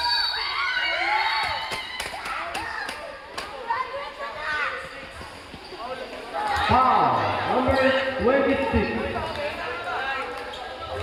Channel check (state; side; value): identical; both; correlation 1.00